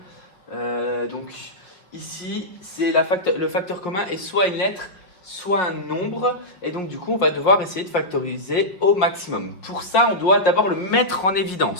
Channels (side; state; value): right; late; 5.5 ms